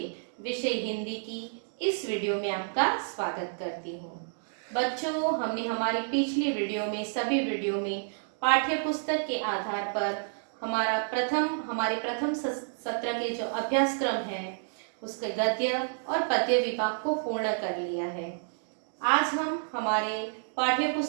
विषय हिंदी की इस वीडियो में आपका स्वागत करती हूँ। बच्चों, हमने हमारी पिछली वीडियो में सभी वीडियो में पाठ्य पुस्तक के आधार पर हमारे प्रथम सत्र के जो अभ्यासक्रम है उसके गद्य और पद्य विभाग को पूर्ण कर लिया है। आज हम हमारे पाठ्य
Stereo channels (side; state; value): left; silent; digital silence